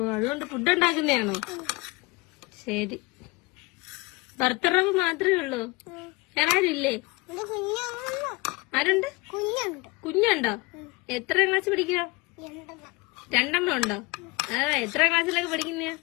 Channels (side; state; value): right; quieter; 24.8 dB